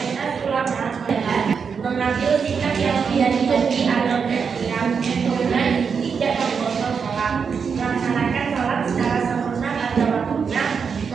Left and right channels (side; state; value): left; quieter; 6.1 dB